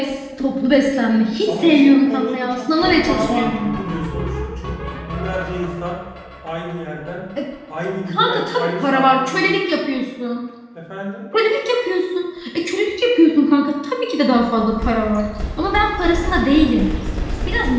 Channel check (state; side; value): identical; both; correlation 1.00